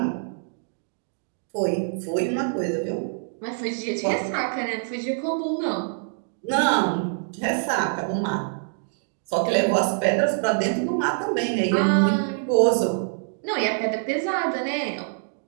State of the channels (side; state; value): left; silent; digital silence